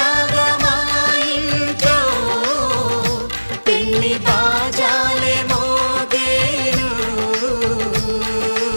మా ఇంట్లో పెళ్లి బాజాలే మోగేను.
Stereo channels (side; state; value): both; inverted; correlation -1.00